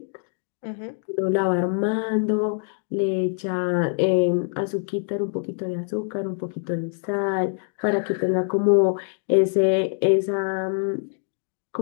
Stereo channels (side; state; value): right; silent; 57 dB below the other